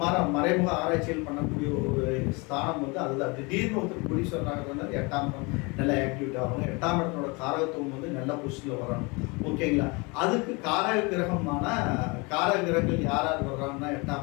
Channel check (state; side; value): quieter; right; 28.0 dB